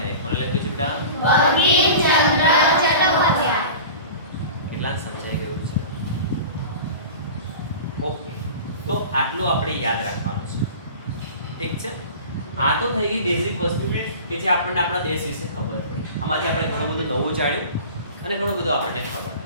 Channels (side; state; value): both; inverted; correlation -0.37